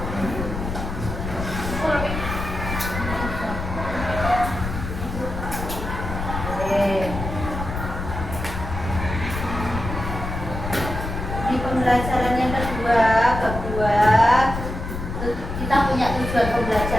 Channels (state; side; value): noise; left; rumble, 6 dB below the sound